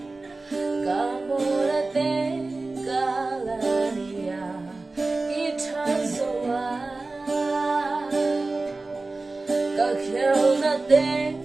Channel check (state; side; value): quieter; left; 3.4 dB